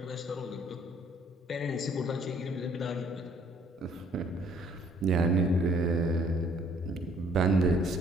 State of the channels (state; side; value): normal; both; correlation 0.61